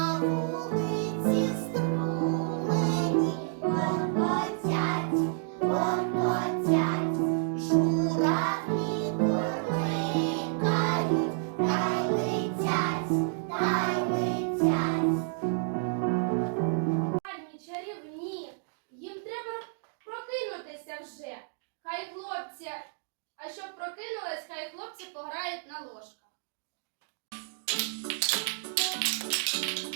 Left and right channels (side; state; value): left; silent; digital silence